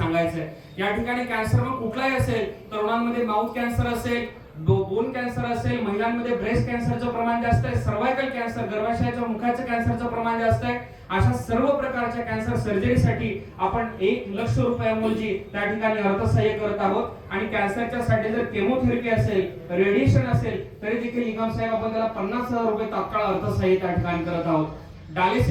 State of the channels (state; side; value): identical; both; correlation 1.00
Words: आहे. या ठिकाणी कॅन्सर मग कुठलाही असेल, तरुणांमध्ये माउथ कॅन्सर असेल, बोन कॅन्सर असेल, महिलांमध्ये ब्रेस्ट कॅन्सरचं प्रमाण जास्त आहे, सर्वायकल कॅन्सर गर्भाशयाच्या मुखाच्या कॅन्सरचं प्रमाण जास्त आहे. अशा सर्व प्रकारच्या कॅन्सर सर्जरीसाठी आपण 1,00,000 रुपयांऐवजी त्या ठिकाणी अर्थसहाय्य करत आहोत. आणि कॅन्सरच्या साठी जर केमोथेरपी असेल, रेडिएशन असेल तरी देखील निगम साहेब आपण त्याला 50,000 रुपये तात्काळ अर्थसहाय्य त्या ठिकाणी करत आहोत.